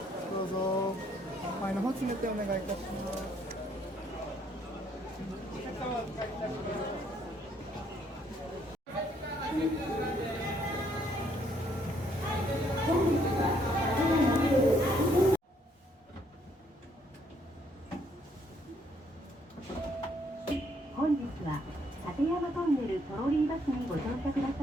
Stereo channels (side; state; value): both; normal; correlation 0.68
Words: どうぞ前の方詰めてお願いいたします。本日は立山トンネルトロリーバスにご乗車くだ